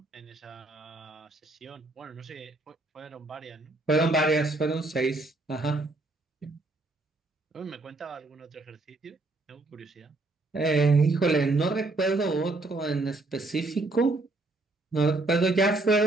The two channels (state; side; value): quieter; left; 3.1 dB